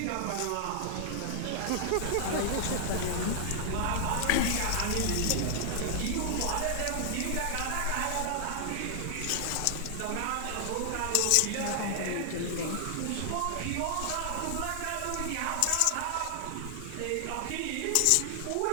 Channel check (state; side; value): different; both; correlation 0.00